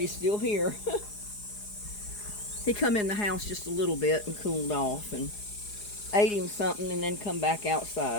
still here. He come in the house just a little bit and cooled off and ate him something and then come back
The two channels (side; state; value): right; late; 4.8 ms